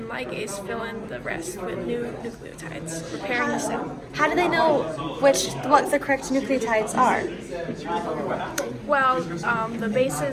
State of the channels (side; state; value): both; identical; correlation 1.00